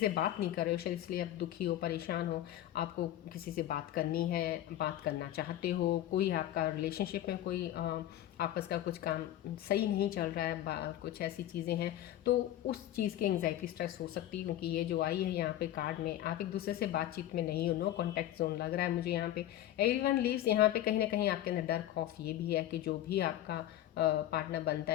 बात नहीं कर रहे हो शायद, इसलिए आप दुखी हो, परेशान हो। आपको किसी से बात करनी है, बात करना चाहते हो, कोई आपका रिलेशनशिप में कोई आपस का कुछ काम सही नहीं चल रहा है, कुछ ऐसी चीज़ें हैं, तो उस चीज़ की एंग्जाइटी, स्ट्रेस हो सकती है। क्योंकि ये जो आई है यहाँ पे कार्ड में, आप एक दूसरे से बातचीत में नहीं हो, नो कॉन्टैक्ट जोन लग रहा है मुझे यहाँ पे। एवरीवन लीव्स, यहाँ पे कहीं ना कहीं आपके अंदर डर, खौफ ये भी है कि जो भी आपका पार्टनर बनता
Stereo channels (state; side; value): quieter; right; 12.9 dB